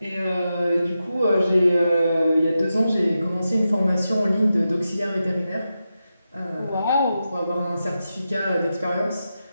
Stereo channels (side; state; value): both; inverted; correlation -0.90